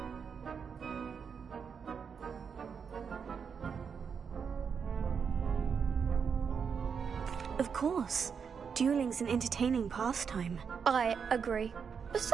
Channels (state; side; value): quieter; left; 6.4 dB